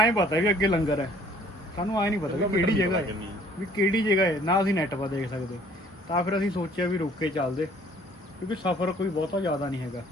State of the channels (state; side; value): normal; both; correlation 0.56